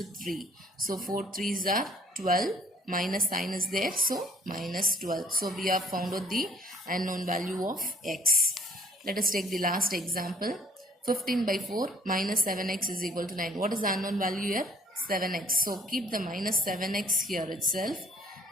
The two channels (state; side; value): normal; both; correlation 0.56